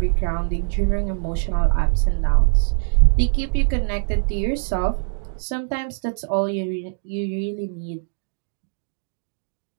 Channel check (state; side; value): silent; left; digital silence